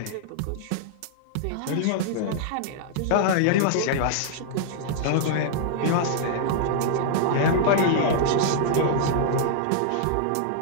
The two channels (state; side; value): different; both; correlation -0.01